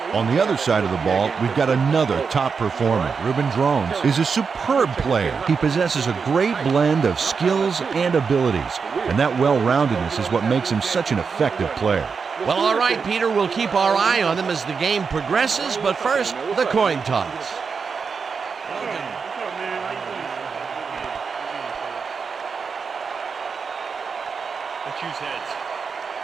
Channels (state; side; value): quieter; left; 5.5 dB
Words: On the other side of the ball, we've got another top performer. Ruben Drones is a superb player. He possesses a great blend of skills and abilities, and that well-roundedness is what makes him such an effective player. Well, all right, Peter, we'll keep our eye on them as the game progresses, but first, the coin toss. Let's choose heads.